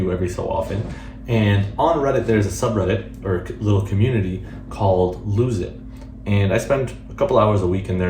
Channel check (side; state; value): both; identical; correlation 1.00